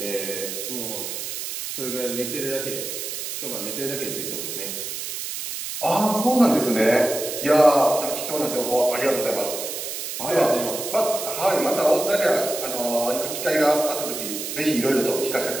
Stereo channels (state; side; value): noise; right; hiss, 6 dB below the sound